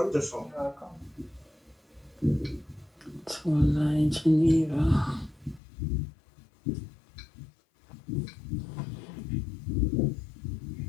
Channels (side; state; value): right; drops out; at 5.6 s